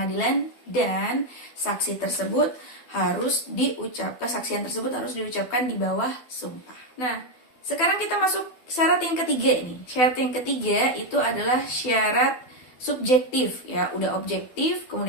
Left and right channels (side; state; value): right; late; 12 ms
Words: dan saksi tersebut kesaksian tersebut harus diucapkan di bawah sumpah. Nah, sekarang kita masuk syarat yang ketiga nih. Syarat yang ketiga itu adalah syarat subjektif ya, udah objektif,